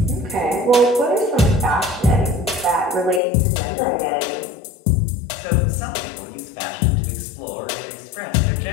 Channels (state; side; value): drops out; right; at 3.2 s